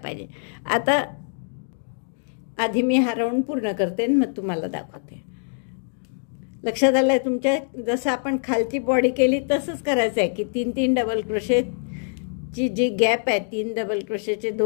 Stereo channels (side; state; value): right; silent; digital silence